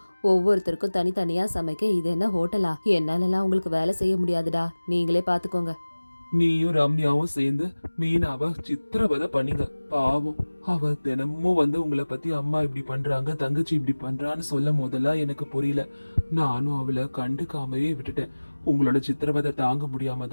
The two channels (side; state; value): both; inverted; correlation -1.00